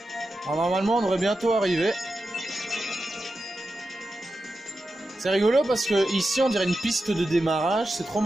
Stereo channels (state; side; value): normal; both; correlation 0.90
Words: Alors, normalement, on devrait bientôt arriver. C'est rigolo parce que ici on dirait une piste de démarrage, c'est trop